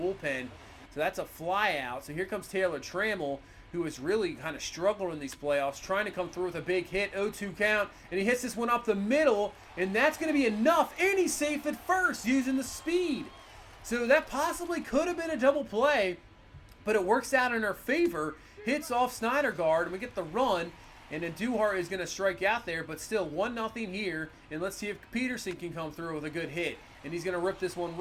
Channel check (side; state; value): both; identical; correlation 1.00